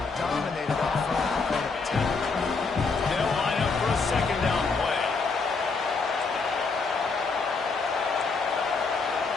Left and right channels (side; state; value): right; quieter; 4.4 dB